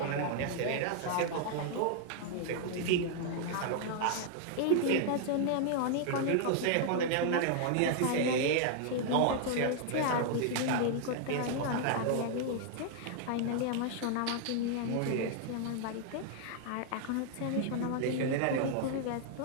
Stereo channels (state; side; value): different; both; correlation 0.00